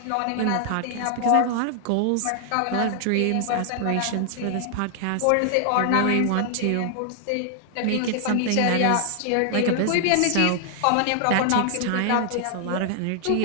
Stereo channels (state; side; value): different; both; correlation 0.00